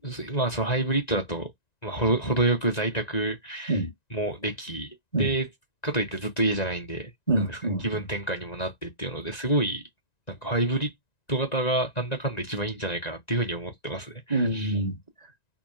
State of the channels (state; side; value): late; right; 1.9 ms